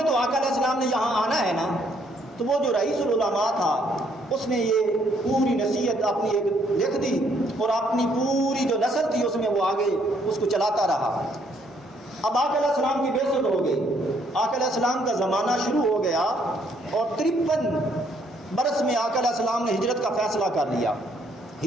تو آقا علیہ السلام نے یہاں آنا ہے نا، تو وہ جو رئیس العلماء تھا اس نے یہ پوری نصیحت اپنی ایک لکھ دی، اور اپنی پوری جو نسل تھی اس میں وہ آگے اس کو چلاتا رہا۔ اب آقا علیہ السلام کی بعثت ہو گئی، آقا علیہ السلام کا زمانہ شروع ہو گیا، اور 53 برس میں آقا علیہ السلام نے ہجرت کا فیصلہ کر لیا۔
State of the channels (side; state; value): both; normal; correlation 0.68